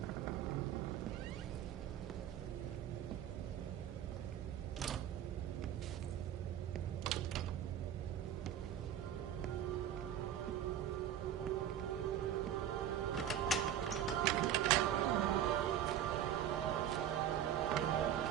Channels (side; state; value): left; quieter; 10.2 dB